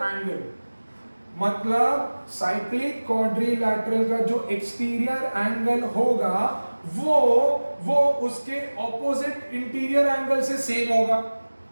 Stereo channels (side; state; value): both; inverted; correlation -1.00